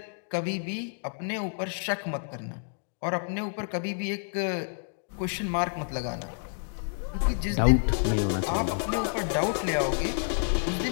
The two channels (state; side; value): silent; right; digital silence